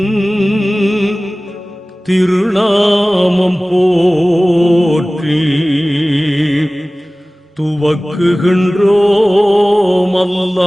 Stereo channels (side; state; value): both; normal; correlation 0.98